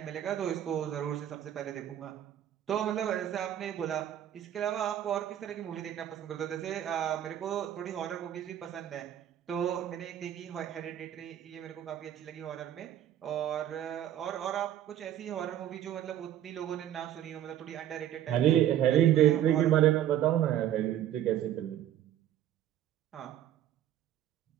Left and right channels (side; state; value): left; quieter; 11.4 dB